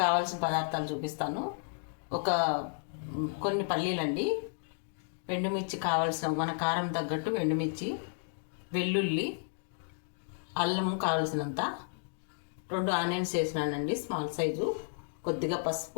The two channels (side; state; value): right; silent; digital silence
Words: కావాల్సిన పదార్థాలు చూపిస్తాను. కొన్ని పల్లీలండి, ఎండుమిర్చి కావాల్సిన మన కారం తగ్గట్టు ఎండుమిర్చి, వెల్లుల్లి, అల్లం కావాల్సినంత, 2 ఆనియన్స్ వేసినానండి స్మాల్ సైజు, కొద్దిగా